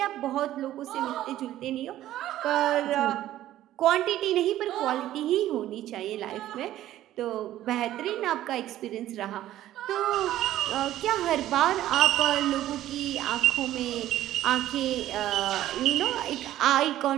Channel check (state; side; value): quieter; left; 13.5 dB